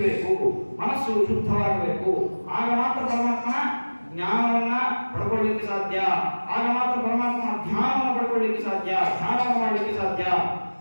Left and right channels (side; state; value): both; inverted; correlation -1.00